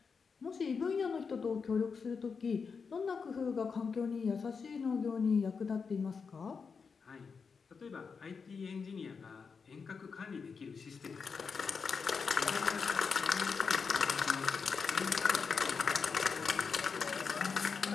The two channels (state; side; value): quieter; right; 5.5 dB